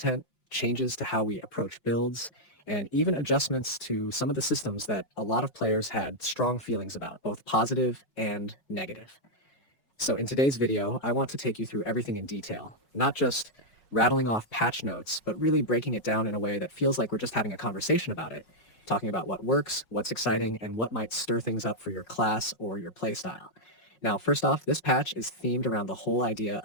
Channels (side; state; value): right; late; 5.5 ms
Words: changes to how we approach builds, and even adjustments to some of the systems that a lot of players had strong feelings about, both positive and negative. So in today's video, I want to take you through everything in detail, not just rattling off patch notes, but really breaking it down in a way that feels like we're just having a conversation about it, talking about what works, what's exciting, and what might stir things up for your class or your playstyle. Now, first off, this patch is themed around the whole idea